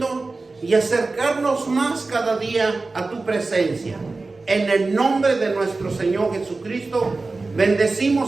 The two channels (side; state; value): left; quieter; 3.6 dB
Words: y acercarnos más cada día a tu presencia. En el nombre de nuestro Señor Jesucristo,